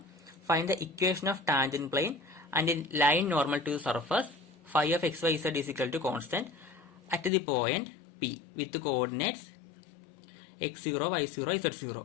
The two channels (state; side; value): drops out; right; at 7.3 s